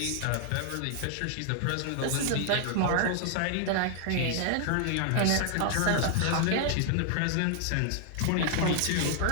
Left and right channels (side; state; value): both; different; correlation 0.00